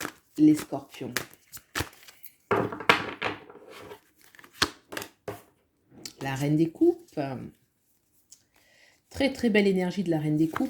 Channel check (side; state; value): both; identical; correlation 1.00